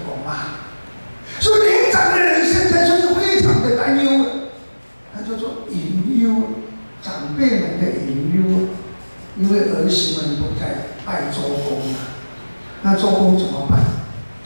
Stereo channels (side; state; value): both; inverted; correlation -1.00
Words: 狗妈。所以年长的人现在就是非常的担忧，他就说隐忧，长辈们的隐忧，因为儿媳们不再拜周公了，那周公怎么办？